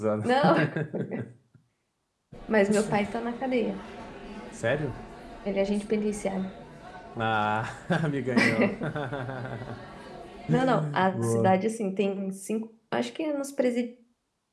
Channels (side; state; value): both; identical; correlation 1.00